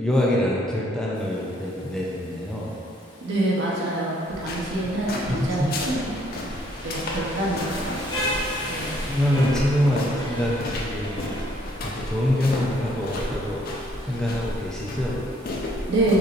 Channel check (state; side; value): normal; both; correlation 0.65